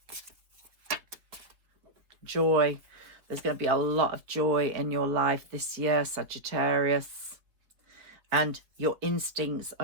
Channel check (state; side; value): late; left; 4.2 ms